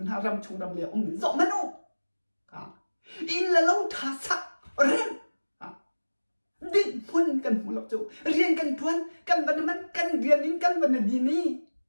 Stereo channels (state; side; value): inverted; both; correlation -1.00